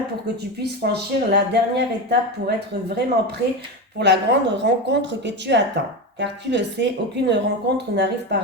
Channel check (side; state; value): both; normal; correlation 0.19